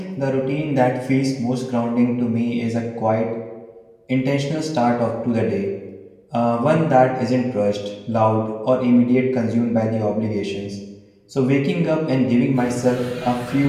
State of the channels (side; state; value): both; identical; correlation 1.00